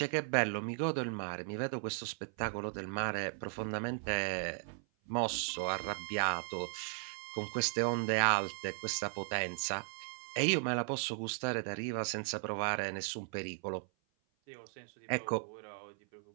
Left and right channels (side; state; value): left; silent; 53 dB below the other